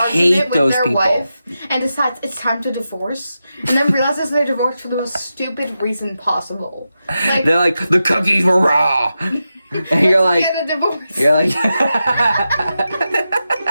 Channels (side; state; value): both; inverted; correlation -0.90